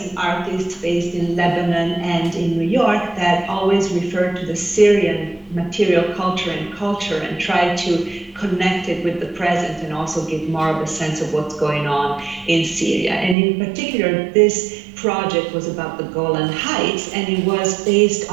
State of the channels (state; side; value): drops out; left; at 13.4 s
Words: and artists based in Lebanon and in New York that always refer to the Syrian material culture and try to connect it with the present and also give more of a sense of what's going on in Syria. And in particular, this project was about the Golan Heights, and it was based